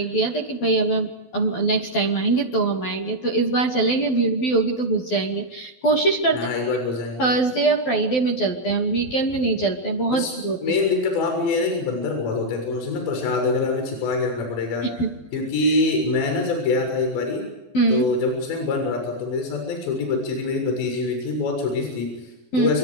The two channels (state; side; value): late; right; 12 ms